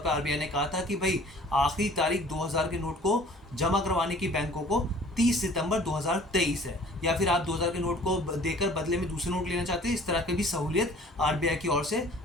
आरबीआई ने कहा था कि भाई आखिरी तारीख 2000 के नोट को जमा करवाने की बैंकों को 30 सितंबर 2023 है, या फिर आप 2000 के नोट को देकर बदले में दूसरे नोट लेना चाहते हैं, इस तरह की भी सहूलियत आरबीआई की ओर से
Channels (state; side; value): normal; both; correlation 0.50